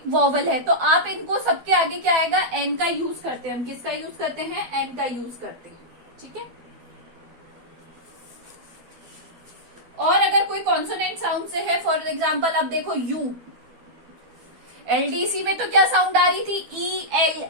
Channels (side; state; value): left; late; 12 ms